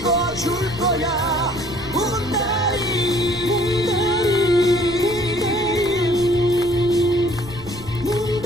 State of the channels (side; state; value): left; noise; rumble, 16 dB below the sound